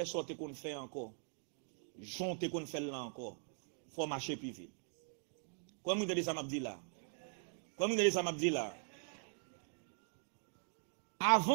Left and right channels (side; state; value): left; silent; 50 dB below the other